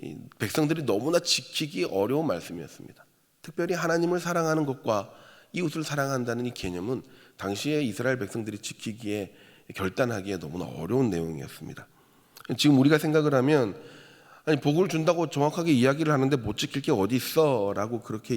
이 백성들이 너무나 지키기 어려운 말씀이었습니다. 특별히 하나님을 사랑하는 것과 이웃을 사랑한다는 이 개념은 당시에 이스라엘 백성들이 지키기에 결단하기에 너무나 어려운 내용이었습니다. 지금 우리가 생각을 하면 아니 복을 준다고 정확하게 이야기를 하는데 못 지킬 게 어디 있어 라고 그렇게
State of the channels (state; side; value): identical; both; correlation 1.00